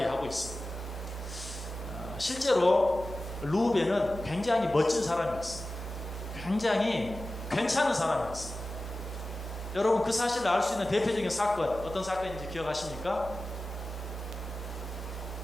있습니다. 실제로 르우벤은 굉장히 멋진 사람이었어요. 굉장히 괜찮은 사람이었어요. 여러분 그 사실을 알 수 있는 대표적인 사건 어떤 사건인지 기억하십니까?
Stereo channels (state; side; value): normal; both; correlation 0.95